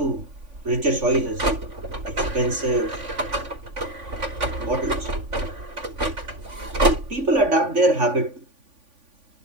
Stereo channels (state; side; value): late; left; 3.5 ms